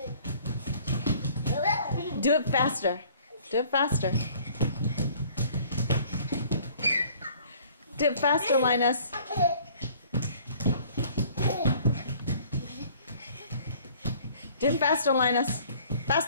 Do it faster. Do it faster. Do it faster, Linus. Do it faster, Linus.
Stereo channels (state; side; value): inverted; both; correlation -0.54